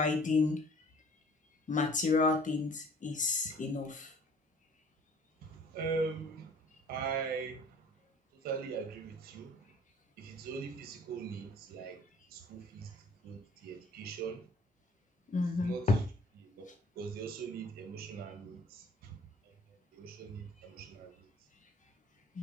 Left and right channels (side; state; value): both; normal; correlation 0.52